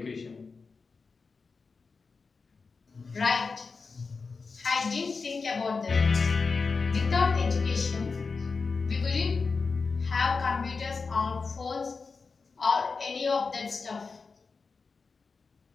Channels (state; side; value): quieter; right; 4.6 dB